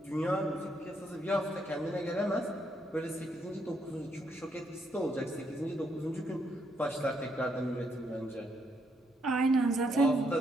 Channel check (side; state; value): both; normal; correlation 0.75